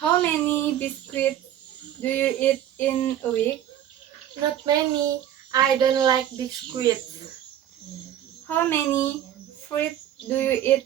How many biscuits do you eat in a week? Not many. I don't like biscuits. How many fruit do you eat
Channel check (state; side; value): quieter; left; 11.2 dB